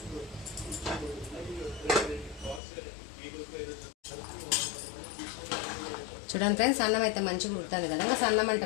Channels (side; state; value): right; drops out; at 2.6 s